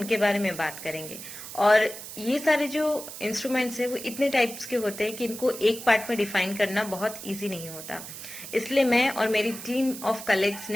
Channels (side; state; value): right; noise; hiss, 11 dB below the sound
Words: बारे में बात करेंगे। और ये सारे जो इंस्ट्रूमेंट्स हैं वो इतने टाइप्स के होते हैं कि इनको एक पार्ट में डिफाइन करना बहुत ईजी नहीं होता। इसलिए मैं और मेरी टीम ऑफ कलीग्स